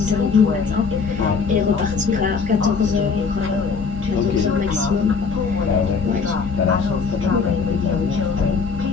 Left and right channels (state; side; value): quieter; right; 5.3 dB